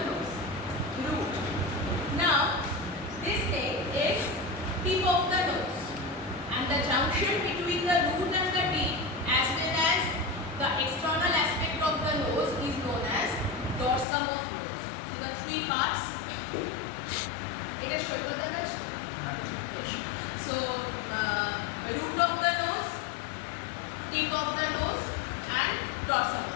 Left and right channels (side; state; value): right; drops out; at 14.1 s